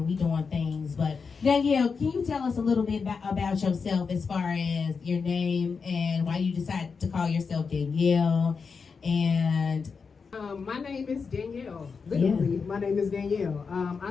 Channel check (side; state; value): right; quieter; 5.3 dB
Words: we doing things, but Danielle, can you tell us a little bit about yourself as far as your name and why you decided to call yourself Danielle? And my name is Danielle. Literally, my name is Danielle.